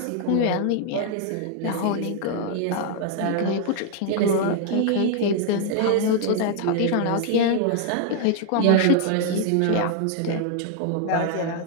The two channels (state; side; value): different; both; correlation 0.00